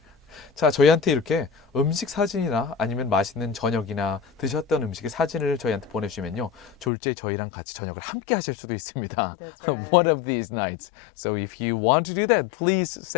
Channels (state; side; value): drops out; right; at 6.9 s